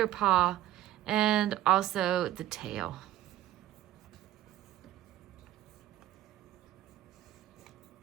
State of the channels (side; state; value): left; quieter; 13.4 dB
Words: paw and also the tail.